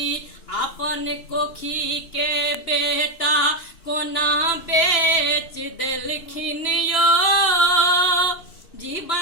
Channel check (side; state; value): right; late; 3.0 ms